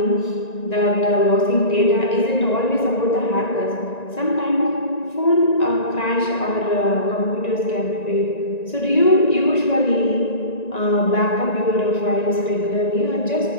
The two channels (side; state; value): right; late; 1.9 ms